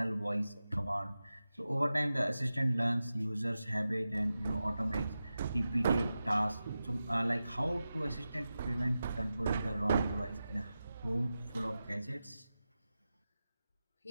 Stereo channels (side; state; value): both; inverted; correlation -0.93